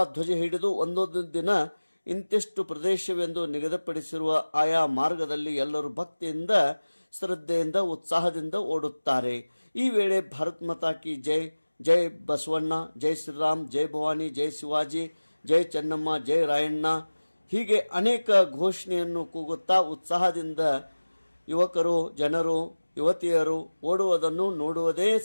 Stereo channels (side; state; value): both; inverted; correlation -1.00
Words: ಧ್ವಜ ಹಿಡಿದು ಒಂದೊಂದು ದಿನ ಇಂತಿಷ್ಟು ಪ್ರದೇಶವೆಂದು ನಿಗದಿಪಡಿಸಿರುವ ಆಯಾ ಮಾರ್ಗದಲ್ಲಿ ಎಲ್ಲರೂ ಭಕ್ತಿಯಿಂದ, ಶ್ರದ್ಧೆಯಿಂದ, ಉತ್ಸಾಹದಿಂದ ಓಡುತ್ತಾರೆ. ಈ ವೇಳೆ ಭಾರತ್ ಮಾತಾ ಕಿ ಜೈ, ಜೈ ಬಸವಣ್ಣ, ಜೈ ಶ್ರೀರಾಮ್, ಜೈ ಭವಾನಿ, ಜೈ ಶಿವಾಜಿ, ಜೈ ಚೆನ್ನಮ್ಮ, ಜೈ ರಾಯಣ್ಣ ಹೀಗೆ ಅನೇಕ ಘೋಷಣೆಯನ್ನು ಕೂಗುತ್ತಾ ಉತ್ಸಾಹದಿಂದ ಯುವಕರು, ಜನರು, ಯುವತಿಯರು ಓಡುವುದನ್ನು ನೋಡುವುದೇ